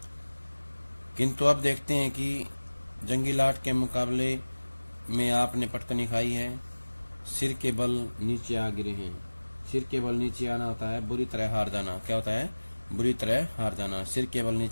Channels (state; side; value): inverted; both; correlation -1.00